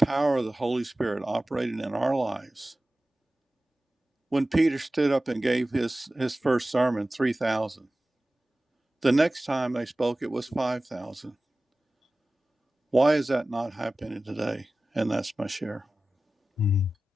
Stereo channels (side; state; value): both; normal; correlation 0.96